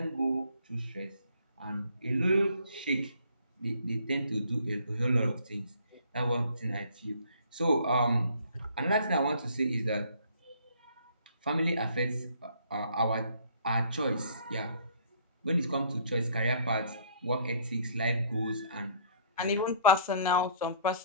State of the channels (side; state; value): both; inverted; correlation -0.59